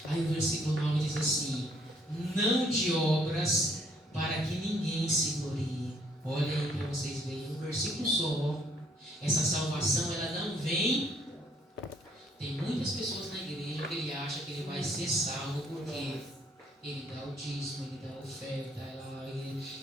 Aí o versículo 9 diz assim: não de obras, para que ninguém se glorie. Olha aí para vocês verem, um versículo só. Essa salvação, ela não vem. Tem muitas pessoas na igreja que ele acha que ele vai ser salvo porque ele dá o dízimo, ele dá a oferta,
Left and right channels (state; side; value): normal; both; correlation 0.66